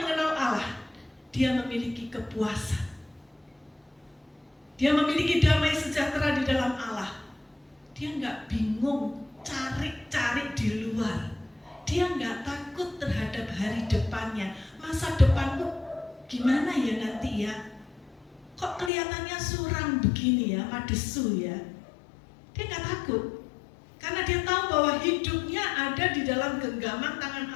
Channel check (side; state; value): right; drops out; at 18.9 s